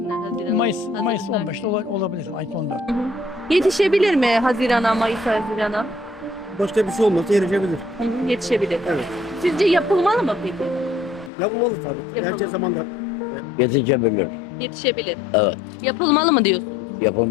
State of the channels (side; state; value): right; drops out; at 11.3 s